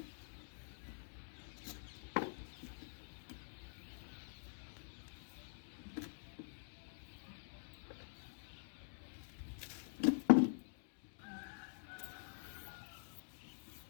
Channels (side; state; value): right; silent; digital silence